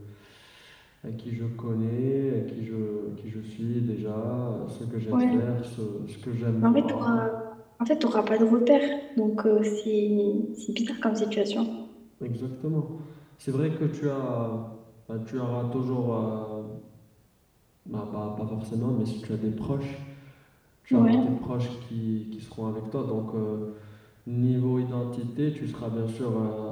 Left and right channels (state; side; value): identical; both; correlation 1.00